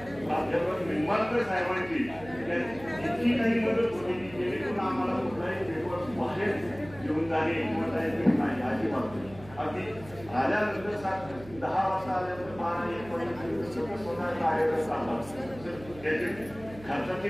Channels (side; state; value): right; noise; hum, 18 dB below the sound